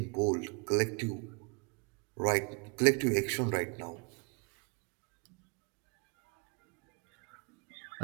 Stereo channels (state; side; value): quieter; left; 33.0 dB